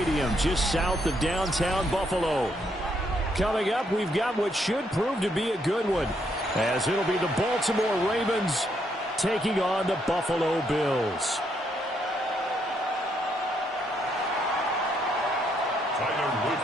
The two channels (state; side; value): normal; both; correlation 0.74